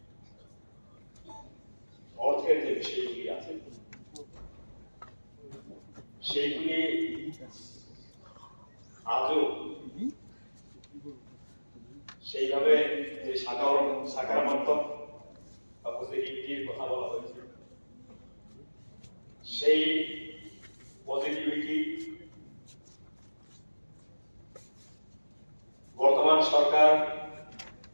অর্থের যে বিষয়গুলি আছে সেইগুলি আজও সেইভাবে যে সাকারাত্মক বা পজিটিভিটির কথা বলা হয়েছে, সেই পজিটিভিটি বর্তমান সরকার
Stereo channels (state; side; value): inverted; both; correlation -1.00